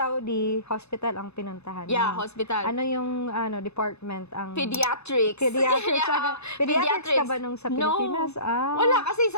hospital ang pinuntahan Yeah, mo. hospital. Ano yung department? Ang Pediatrics. Pediatrics. Yeah, Pediatrics ka ba nung sa Pilipinas? No. Ah. Wala kasi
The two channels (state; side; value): late; right; 0.80 ms